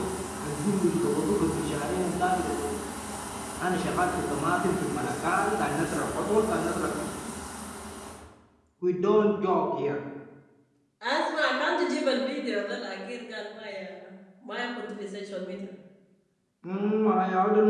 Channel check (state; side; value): identical; both; correlation 1.00